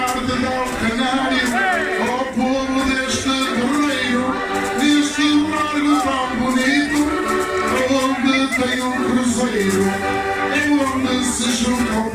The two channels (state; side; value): identical; both; correlation 1.00